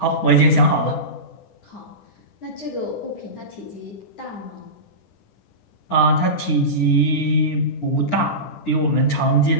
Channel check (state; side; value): late; right; 10 ms